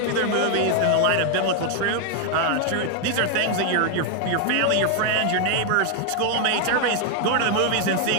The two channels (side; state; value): both; different; correlation 0.00